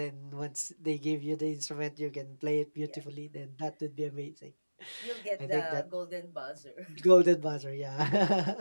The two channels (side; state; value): both; inverted; correlation -1.00